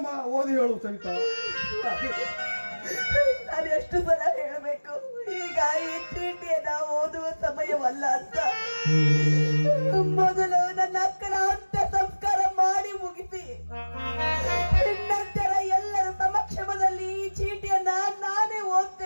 ಓದಿ ಹೇಳು ಸವಿತಾ. ನಾನು ಎಷ್ಟು ಸಲ ಹೇಳಬೇಕು, ಈಗ ಈ ಚೀಟಿಯನ್ನ ಓದುವ ಸಮಯವಲ್ಲ ಅಂತ. ಮೊದಲು ನನ್ನ ಅಕ್ಕನ ಅಂತ್ಯ ಸಂಸ್ಕಾರ ಮಾಡಿ ಮುಗಿಸಿ ನಂತರ ಎಲ್ಲರ ಸಮಕ್ಷಮದಲ್ಲಿ ಈ ಚೀಟಿಯನ್ನ ನಾನೇ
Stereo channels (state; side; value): inverted; both; correlation -1.00